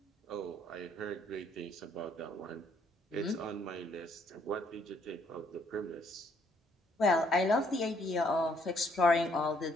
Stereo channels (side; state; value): both; normal; correlation 0.67